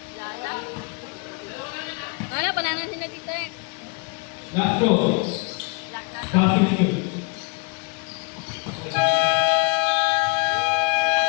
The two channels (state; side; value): quieter; right; 30.8 dB